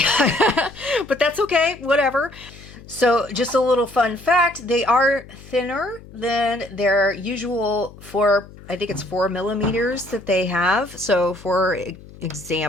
But that's okay, whatever. So just a little fun fact, they are thinner than their usual I think it's 4 millimeters that they have. So for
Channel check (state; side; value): noise; left; hum, 19 dB below the sound